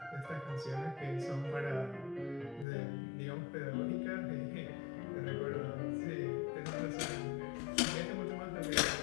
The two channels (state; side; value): drops out; right; at 2.7 s